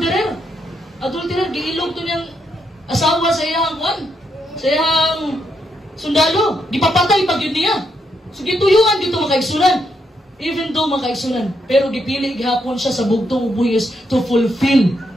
Adulterer, giilog to niyang asawa sa iyang kwan, sa iyang sundalo. Gipapatay pag yun niya. So gituyuan dito mga kaigsunan. Even though mga kaigsunan, pero gipili gihapon siya sa bugtong buhis to fulfill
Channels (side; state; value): both; normal; correlation 0.79